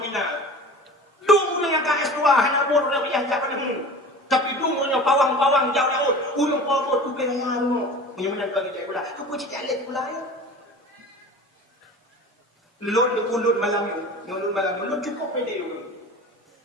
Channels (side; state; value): both; normal; correlation 0.38